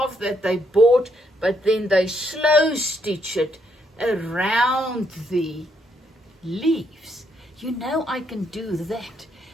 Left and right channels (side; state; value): both; normal; correlation 0.75